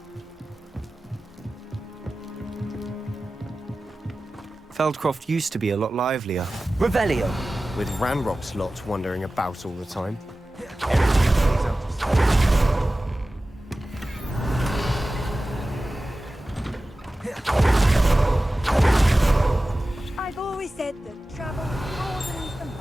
Feldcroft used to be a lot livelier. Revelio! With Ranrock's lot wandering about all the time. I've always said that travel broadens the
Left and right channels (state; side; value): normal; both; correlation 0.96